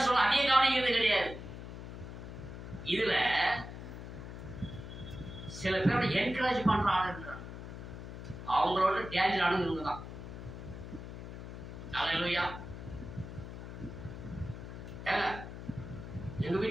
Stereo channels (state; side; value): noise; left; hum, 10 dB below the sound